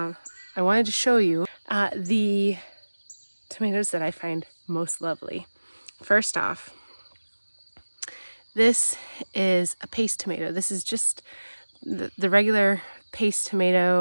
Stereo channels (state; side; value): inverted; both; correlation -1.00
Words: wanted to show you the tomatoes that I find most lovely. First off, this is a paste tomato. This is just the regular paste